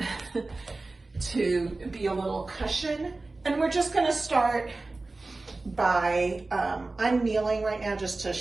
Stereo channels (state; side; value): quieter; left; 3.3 dB